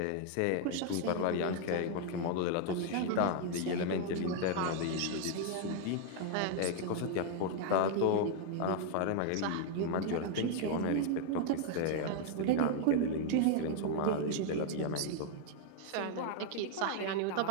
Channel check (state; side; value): different; both; correlation 0.00